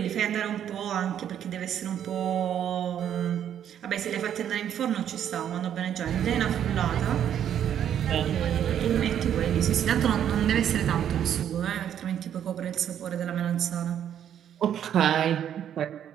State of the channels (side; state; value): left; quieter; 9.8 dB